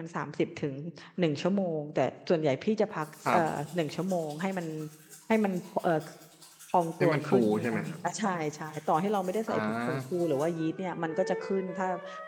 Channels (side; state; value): both; identical; correlation 1.00